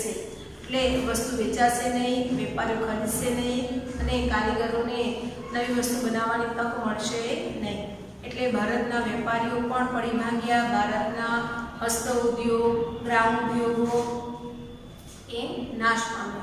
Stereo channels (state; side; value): identical; both; correlation 1.00